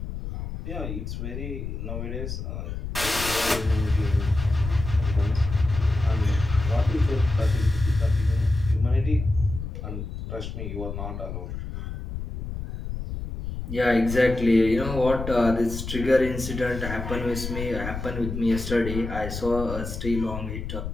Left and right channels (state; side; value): noise; left; rumble, 7 dB below the sound